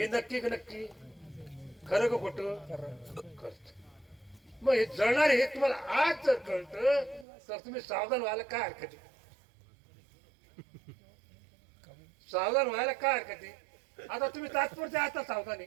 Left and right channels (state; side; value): drops out; left; at 7.2 s